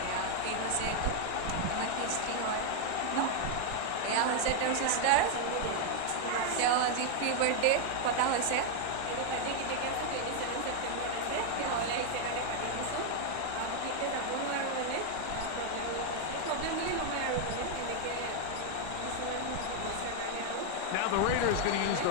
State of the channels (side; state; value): both; different; correlation 0.00